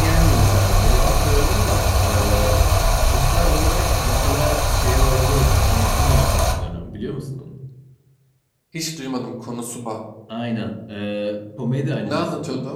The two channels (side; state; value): both; identical; correlation 1.00